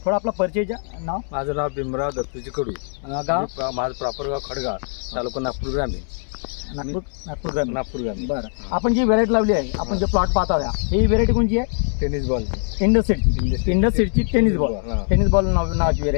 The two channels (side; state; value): right; silent; 56 dB below the other